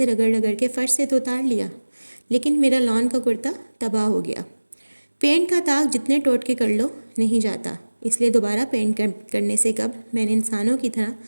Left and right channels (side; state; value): both; inverted; correlation -1.00